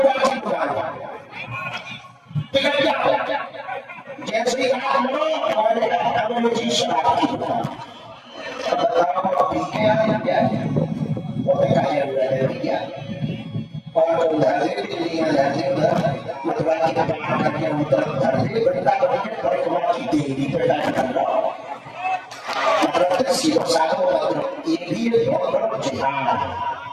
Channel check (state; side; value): identical; both; correlation 1.00